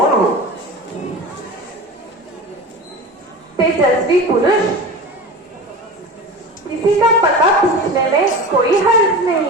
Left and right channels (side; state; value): both; normal; correlation 0.32